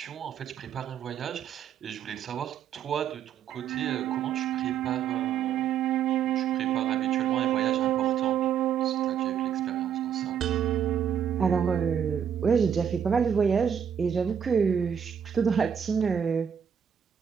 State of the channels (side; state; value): left; quieter; 8.2 dB